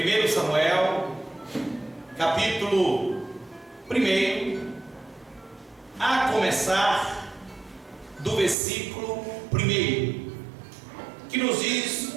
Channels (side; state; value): left; drops out; at 8.6 s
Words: Samuel, capítulo 1, a começar do versículo 1, que nos diz